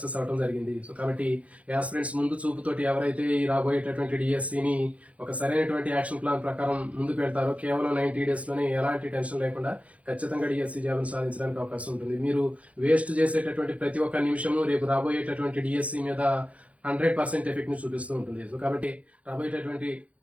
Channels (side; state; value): left; late; 0.065 ms